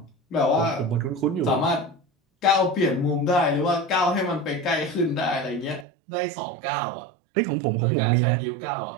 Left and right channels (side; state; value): left; drops out; at 5.9 s